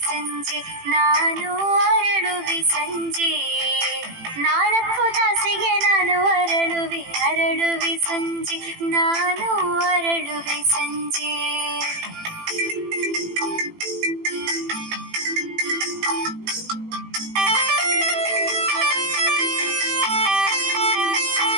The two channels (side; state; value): left; late; 18 ms